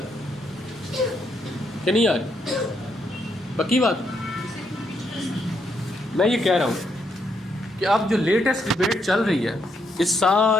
کہ نہیں آ رہی؟ پکی بات میں یہ کہہ رہا ہوں کہ اب جو لیٹسٹ ڈبیٹ چل رہی ہے، اس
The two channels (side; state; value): both; normal; correlation 0.77